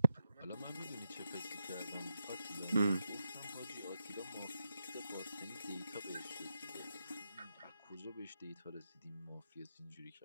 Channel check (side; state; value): both; inverted; correlation -0.86